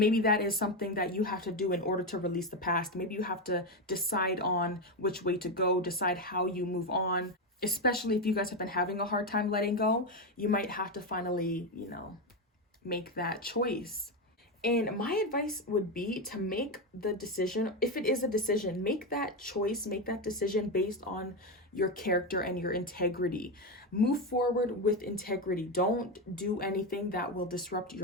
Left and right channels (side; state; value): both; normal; correlation 0.11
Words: that is something that you have to do in order to release the past. Maybe you have to decide on which way to go, decide how you move on. Especially if you guys have been having a hard time letting go, you might have to finally, you know, make that choice. And my advice would be to make the decision, if it is a decision, make that choice, make that decision based on your character and your integrity. Move forward with integrity. Don't do anything that will disrupt